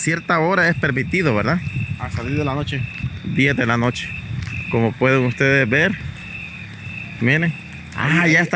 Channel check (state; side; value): identical; both; correlation 1.00